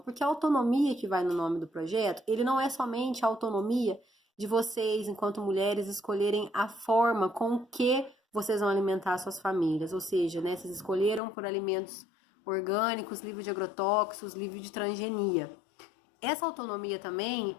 a autonomia que vai no nome do projeto, ele não é somente a autonomia de vocês, enquanto mulheres, escolherem a forma com que vocês vão alimentar suas famílias, ou seja, né, vocês escolheram por alimentos orgânicos, livre de agrotóxicos, livre de transgenia. Essa autonomia também,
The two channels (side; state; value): right; drops out; at 11.2 s